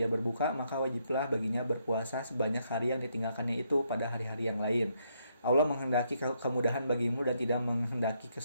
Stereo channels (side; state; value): both; inverted; correlation -0.75